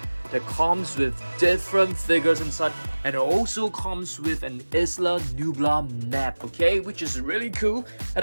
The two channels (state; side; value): inverted; both; correlation -1.00